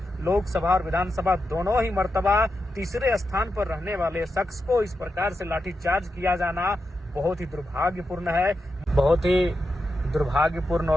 लोकसभा और विधानसभा दोनों ही मर्तबा तीसरे स्थान पर रहने वाले शख्स को इस प्रकार से लाठीचार्ज किया जाना बहुत ही दुर्भाग्यपूर्ण है। बहुत ही दुर्भाग्यपूर्ण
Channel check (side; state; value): both; normal; correlation 0.88